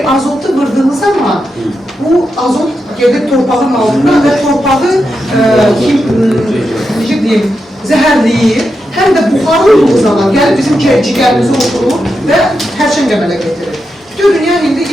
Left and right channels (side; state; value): both; normal; correlation 0.87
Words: azotu vırdığınız zaman bu azot gelir torpağın altına və torpağı necə deyim, zəhərləyir. Həm də buxarlı olduğu zaman gəlib bizim cigərimizi oturur və hərçən qəmələ getirir. Bütün dünya indi